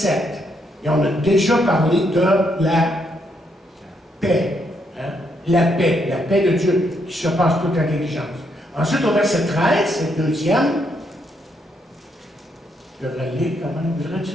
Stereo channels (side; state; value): both; normal; correlation 0.76